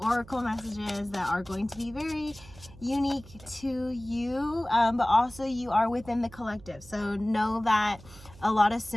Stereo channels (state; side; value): noise; right; hum, 20 dB below the sound